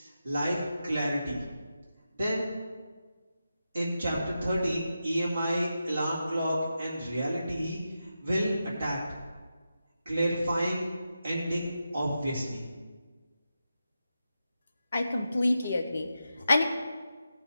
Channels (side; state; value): both; inverted; correlation -0.89